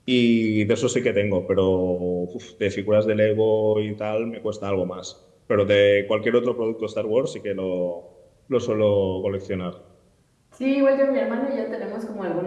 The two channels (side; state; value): both; identical; correlation 1.00